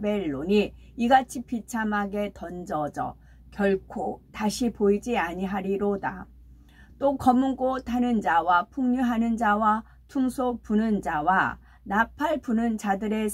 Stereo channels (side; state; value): both; identical; correlation 1.00